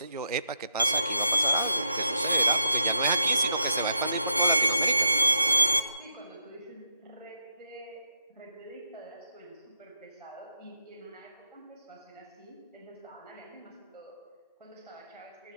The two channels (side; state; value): both; inverted; correlation -0.81